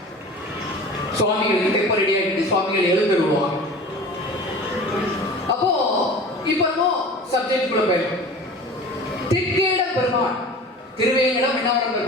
சுவாமிகளுக்கு தெப்பம் ரெடி ஆகிட்டு சுவாமிகள் எழுந்து விடுவாங்க. அப்போ இப்போ சப்ஜெக்ட் குள்ள போயிடும். தெற்கேடம் பெருமாள், திருவேங்கடம் விண்ணவரம்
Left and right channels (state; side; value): normal; both; correlation 0.38